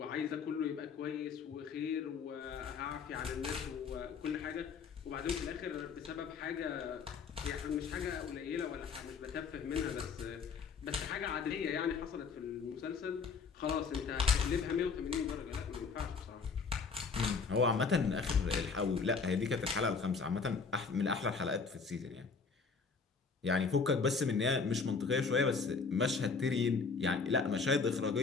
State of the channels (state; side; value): quieter; right; 5.1 dB